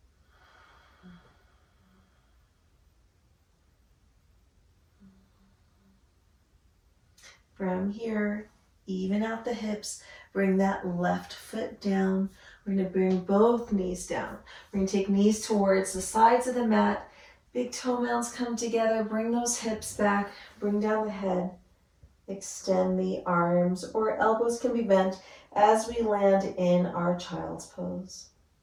From here, even out the hips. Bring that left foot down. We're going to bring both knees down. We're going to take knees towards the sides of the mat. Big toe mounds come together. Bring those hips back. Bring down the head. Extend the arms, or elbows can be bent as we land in our child's pose.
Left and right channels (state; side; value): identical; both; correlation 1.00